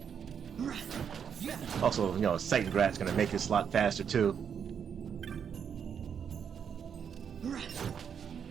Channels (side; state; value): left; quieter; 7.5 dB